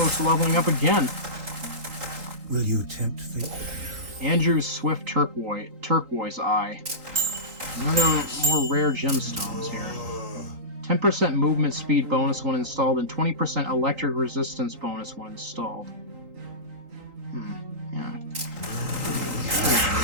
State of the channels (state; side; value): late; left; 3.9 ms